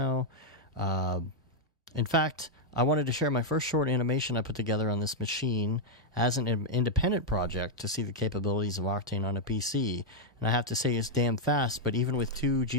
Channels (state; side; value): normal; both; correlation -0.02